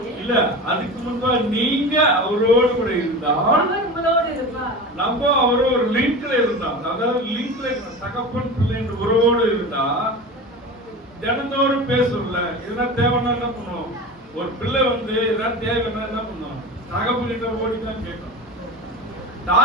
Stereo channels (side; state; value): both; normal; correlation 0.30